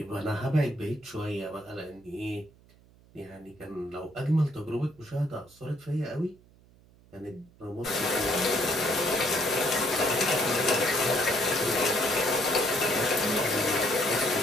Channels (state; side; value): noise; right; hum, 27 dB below the sound